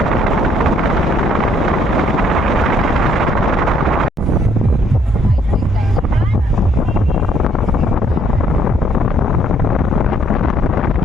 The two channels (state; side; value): normal; both; correlation 0.66